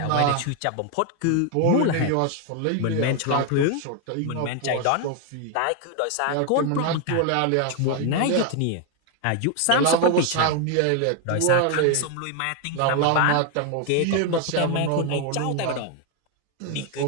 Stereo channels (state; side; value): different; both; correlation 0.01